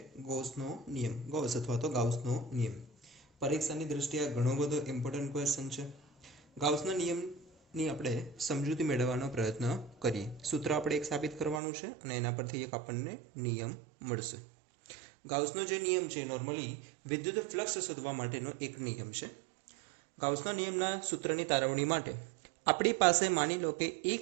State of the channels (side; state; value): left; drops out; at 11.6 s